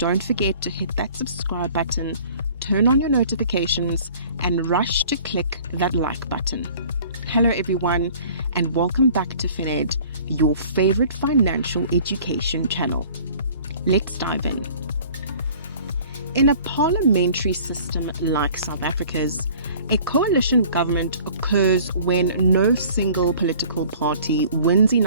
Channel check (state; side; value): inverted; both; correlation -0.50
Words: forget to hit that subscribe button, turn on your notifications, and rush to click that like button. Hello everyone, and welcome back to FinEd, your favorite financial education channel. Let's dive in. In a parliamentary system like South Africa's, a coalition government occurs when no single political party wins